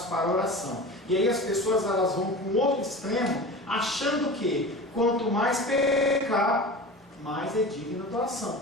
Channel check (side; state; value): both; normal; correlation 0.34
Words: para a oração. E aí as pessoas elas vão para um outro extremo, achando que quanto mais pecar, mais é digno da oração.